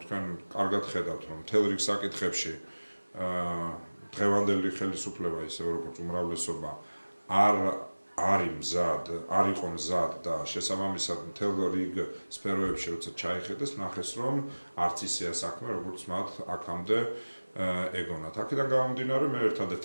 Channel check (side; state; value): both; inverted; correlation -1.00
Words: თქვენ კარგად ხედავთ, რომ მთელ რიგ საკითხებში დღევანდელი ხელისუფლება ისე როგორც უმრავლესობა არ იყო მზად და შესაბამისად მთელ რიგ სფეროებში როცა ჩაიხედეს, ნახეს რომ არც ისეა საქმე, როგორც მათ აქამდე ეგონათ. აქედან გამომდინარე მე ერთადერთ